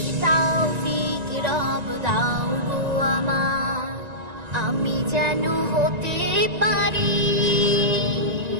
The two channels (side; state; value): left; late; 1.9 ms